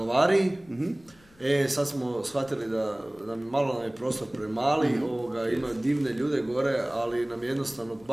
sad smo shvatili da malo je prostor premali, ima divne ljude gore, ali nam je jednostavno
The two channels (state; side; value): noise; left; rumble, 28 dB below the sound